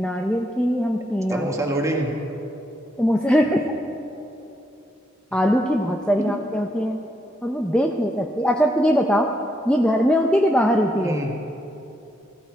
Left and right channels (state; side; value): normal; both; correlation 0.79